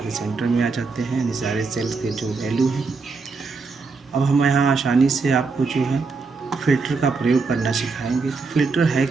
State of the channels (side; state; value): left; quieter; 4.4 dB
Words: सेंटर में आ जाते हैं, यानी सारे सेल्स के जो वैल्यू है। अब हम यहाँ आसानी से आपको जो है फ़िल्टर का प्रयोग करना सिखाएंगे। तो फ़िल्टर है